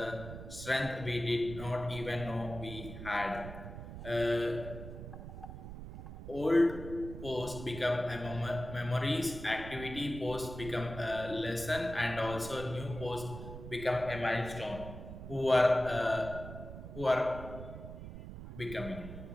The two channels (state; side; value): noise; right; rumble, 10 dB below the sound